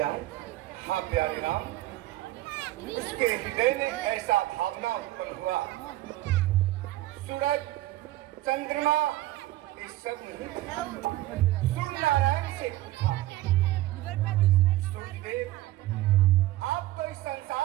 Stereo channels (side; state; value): left; quieter; 16.2 dB